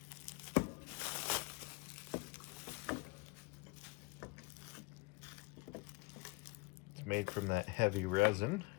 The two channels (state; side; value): quieter; right; 27.5 dB